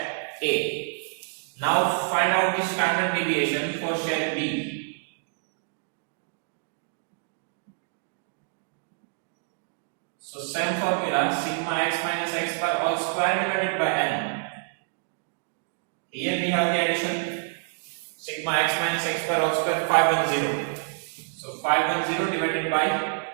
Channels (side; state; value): left; silent; digital silence